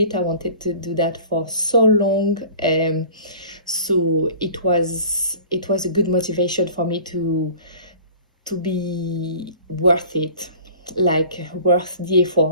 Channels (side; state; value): both; inverted; correlation -0.44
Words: I wanted to do that for so long. So it was a good motivation for me to be worth it, like worth the